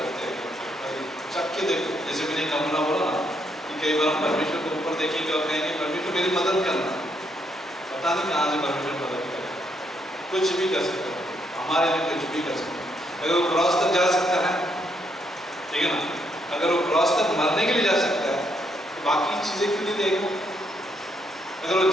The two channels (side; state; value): both; normal; correlation 0.75